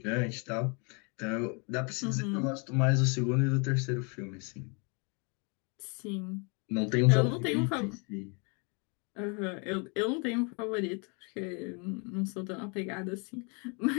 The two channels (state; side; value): quieter; right; 34.1 dB